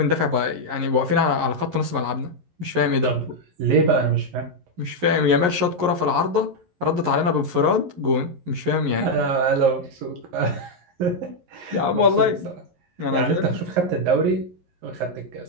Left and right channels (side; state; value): left; late; 11 ms